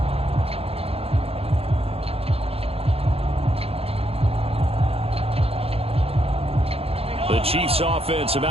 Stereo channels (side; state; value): left; late; 0.28 ms